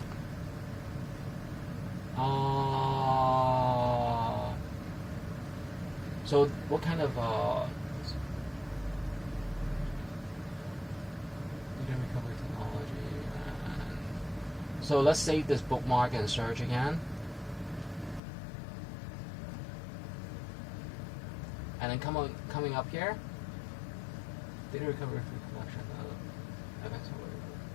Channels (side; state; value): right; drops out; at 18.2 s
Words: So what kind of data recovery technology? So let's save this bookmark and search again. And then coming up here, data recovery collection.